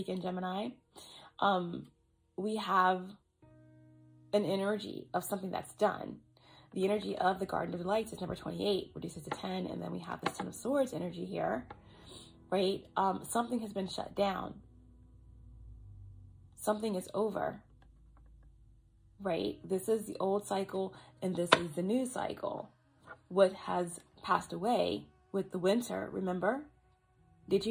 Gemini. We have an energy of something that's done. The energy of the Garden of Delights is number 28, reduces to 10. And then we have this Ten of Swords energy here, right? Something has been shut down. Something is over, right? This is the old cycle and this is the new cycle. What has passed away with the winter, remember? Did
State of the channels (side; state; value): both; identical; correlation 1.00